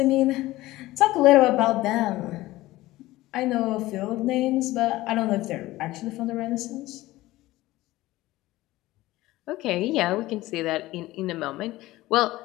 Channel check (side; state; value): right; quieter; 17.6 dB